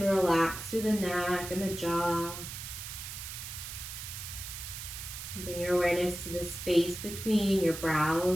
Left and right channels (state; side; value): noise; right; hiss, 9 dB below the sound